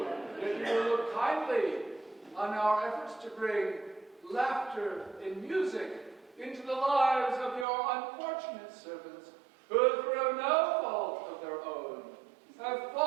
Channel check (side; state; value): left; drops out; at 7.7 s